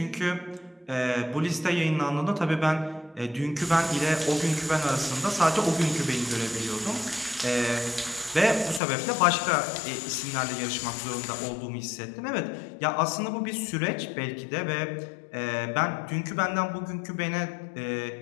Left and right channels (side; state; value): right; drops out; at 8.8 s